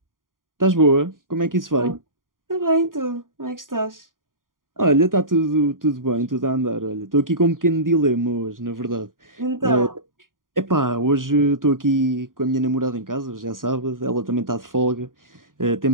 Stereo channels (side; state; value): left; late; 0.90 ms